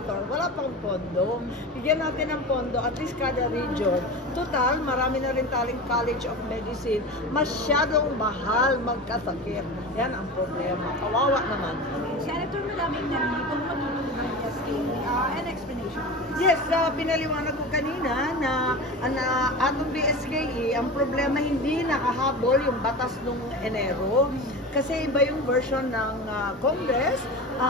Wala pang pondo. Bigyan natin ng pondo, at least kada region. Total, marami na rin taling College of Medicine. Masyadong mahal magkasakit. Yan ang problema. Kawawa naman. Senator, maraming nandito matulog ng SK. An explanation. Yes, pinaliwanag ko kanina na atong BSKE, ang problema hindi nakahabol yung batas nung Enero. Kasi iba yung version ng Congress.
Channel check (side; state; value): both; normal; correlation 0.29